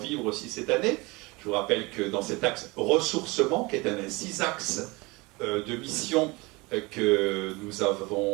aussi cette année. Je vous rappelle que dans cet axe ressourcement, qui est un des 6 axes de mission que nous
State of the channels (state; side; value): quieter; left; 24.7 dB